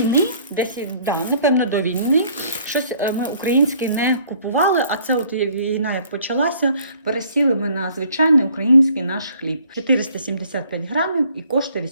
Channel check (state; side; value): inverted; both; correlation -0.59